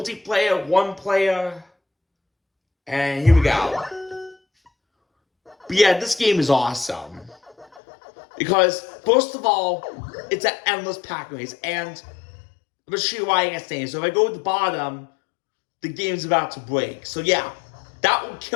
one player. And here we go. But yeah, this game is awesome. Because, first of all, it's an endless Pac-Man race. And I'm gonna show you why I can't say it. So if I go to the bottom, the game's about to break. So yeah, that will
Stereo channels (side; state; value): right; drops out; at 7.8 s